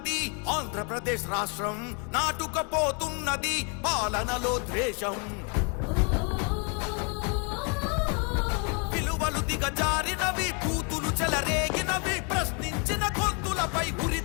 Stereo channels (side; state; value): right; quieter; 36.2 dB